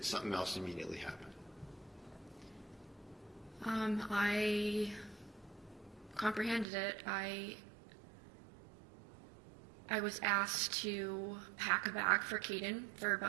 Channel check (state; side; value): drops out; left; at 6.7 s